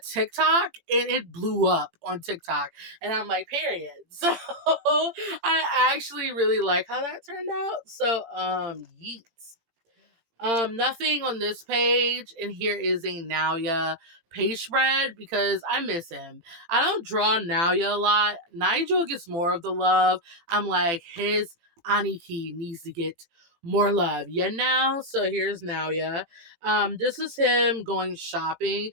TikTok and it blew up on TikTok. And I'm like, period. So I actually really like how that turned out. So yeet. Nothing on this page, and here is a Naoya page spread because I miss him. I don't draw Naoya a lot. Nigel gets more of the love. I'm like, his Aniki needs to get more love. Yeah, now. So here's Naoya. This is him going shopping.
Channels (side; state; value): left; late; 18 ms